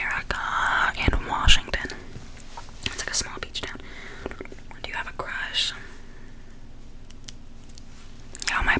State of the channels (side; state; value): both; identical; correlation 1.00